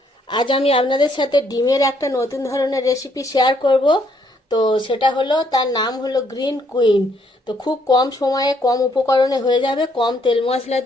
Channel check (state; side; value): normal; both; correlation 0.70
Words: আজ আমি আপনাদের সাথে ডিমের একটা নতুন ধরনের রেসিপি শেয়ার করব। তো সেটা হলো, তার নাম হলো গ্রিন কুইন। তো খুব কম সময়ে কম উপকরণে হয়ে যাবে, কম তেল মশলা